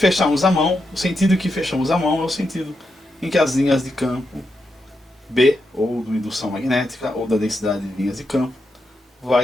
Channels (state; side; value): normal; both; correlation 0.85